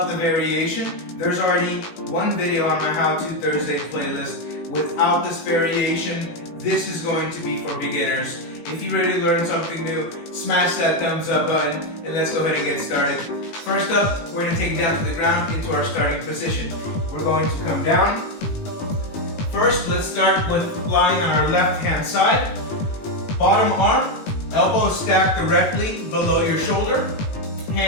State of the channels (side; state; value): right; late; 18 ms